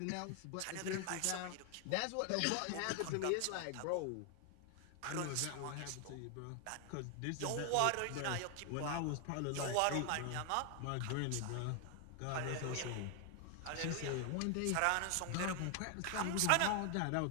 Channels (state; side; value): different; both; correlation 0.00